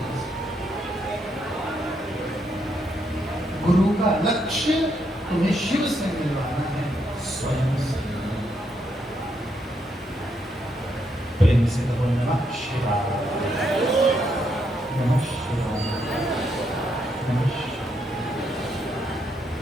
गुरु का लक्ष्य तुम्हें शिव से मिलवाना है, स्वयं से। प्रेम से कहो नमः शिवाय, नमः शिवाय, नमः शिवाय।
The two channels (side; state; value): both; normal; correlation 0.77